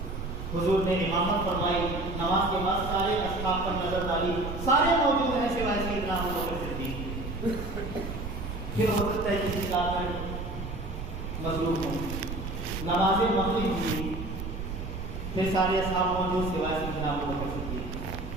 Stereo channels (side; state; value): right; noise; rumble, 7 dB below the sound